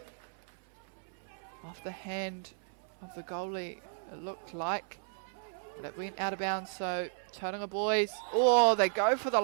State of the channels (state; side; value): silent; left; 55 dB below the other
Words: Off the hand of the goalie, it looked like. But it went out of bounds, so Tauranga boys, oh, they go for the